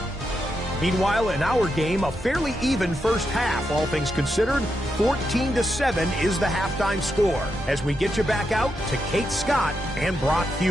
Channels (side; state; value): both; normal; correlation 0.84